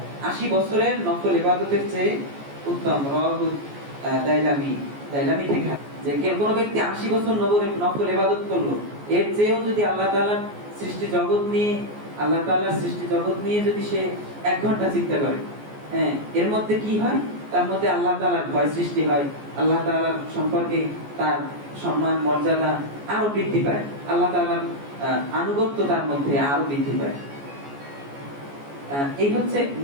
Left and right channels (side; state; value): left; late; 14 ms